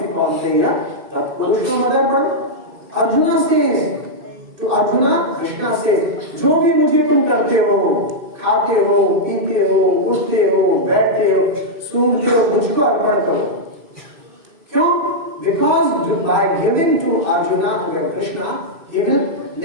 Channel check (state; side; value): late; left; 2.6 ms